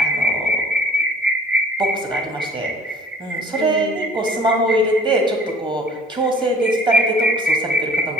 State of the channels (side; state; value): both; normal; correlation 0.51